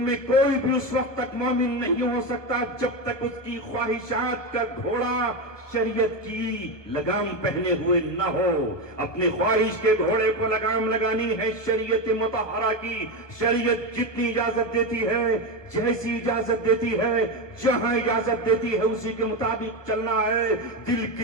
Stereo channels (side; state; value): right; late; 1.1 ms